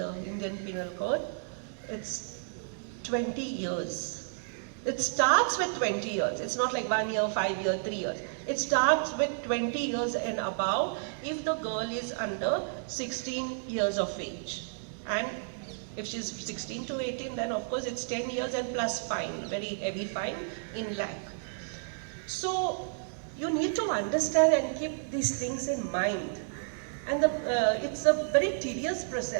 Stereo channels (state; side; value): silent; left; digital silence